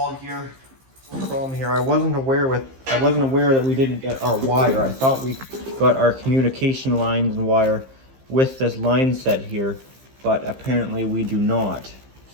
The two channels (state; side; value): late; left; 15 ms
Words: here. Problem here, I wasn't aware that we didn't get our wire. I thought we got our communication lines and wire with this line set here, but apparently we do not.